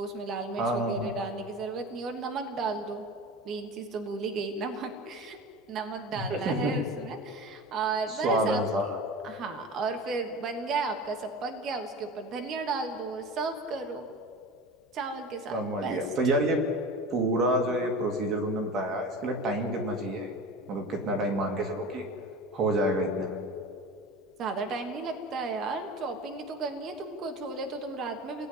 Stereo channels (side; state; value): both; normal; correlation 0.33